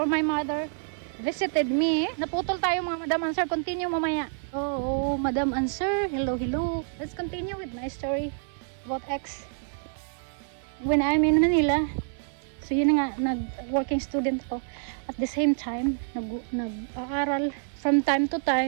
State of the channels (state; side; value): silent; left; 60 dB below the other